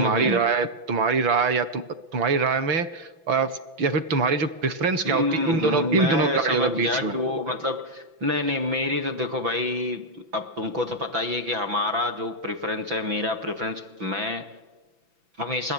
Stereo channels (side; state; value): left; late; 6.0 ms